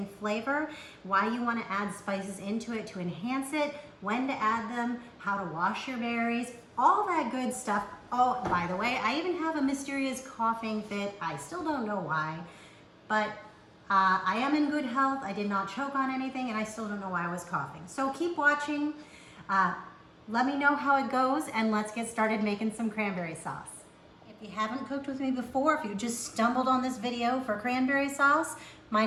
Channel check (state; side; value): identical; both; correlation 1.00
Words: flavor, why you want to add spices into it to enhance it, when to add them, how to wash your berries, all that good stuff. Oh, by the way, I even have a mysterious coughing fit. I still don't know why, but I am in good health. I did not choke on anything, and I still don't know why I was coughing. So keep watching. Let me know how it goes, and let's get started making some cranberry sauce. If you haven't cooked with me before, if you just stumbled on this video for cranberry sauce, my